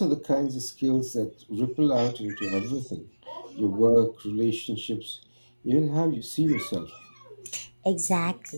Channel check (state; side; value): inverted; both; correlation -1.00